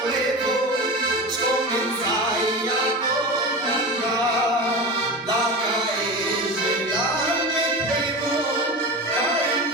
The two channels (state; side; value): normal; both; correlation 0.27